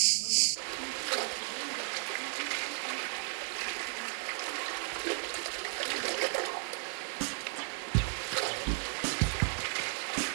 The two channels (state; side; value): silent; left; 55 dB below the other